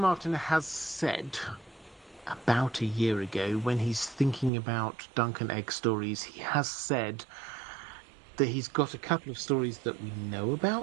has said about a year ago, when he's thinking about Dunk and Egg stories, he has said that he's got a couple of stories that we know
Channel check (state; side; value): drops out; left; at 4.5 s